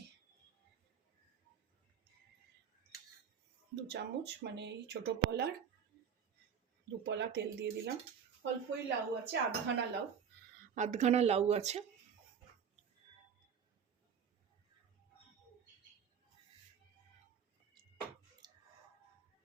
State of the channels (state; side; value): quieter; left; 7.5 dB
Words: 2 চামচ মানে এই ছোটো পলার 2 পলা তেল দিয়ে দিলাম। অল্পই লাউ আছে, আধখানা লাউ আছে।